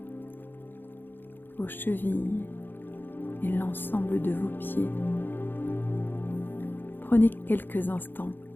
vos chevilles et l'ensemble de vos pieds. Prenez quelques instants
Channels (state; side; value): late; right; 0.096 ms